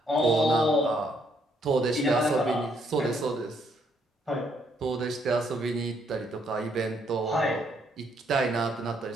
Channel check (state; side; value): normal; both; correlation 0.71